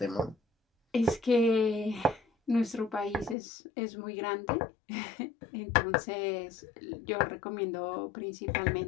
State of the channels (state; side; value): drops out; right; at 3.4 s